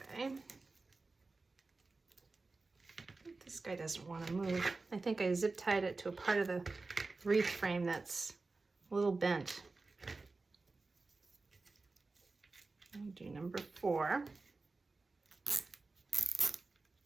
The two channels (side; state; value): left; quieter; 3.7 dB